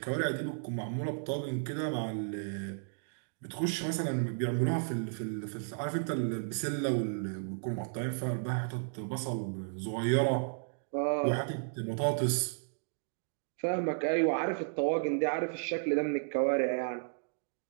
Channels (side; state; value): left; silent; digital silence